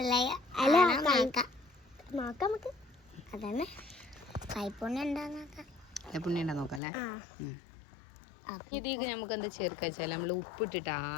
അതന്നെ. കൈപ്പുണ്യം ഉണ്ടാ നോക്കല്ലേ. ഇതിക്ക് നമുക്ക് എന്താ ചേർക്കുക വെച്ചാൽ നമ്മൾ ഉപ്പിട്ടിട്ട്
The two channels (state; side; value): drops out; right; at 6.8 s